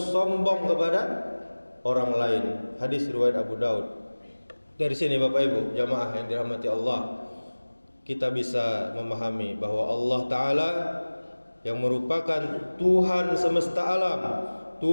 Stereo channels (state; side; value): inverted; both; correlation -1.00